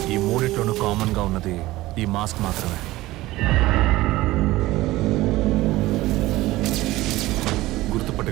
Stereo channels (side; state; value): left; quieter; 17.8 dB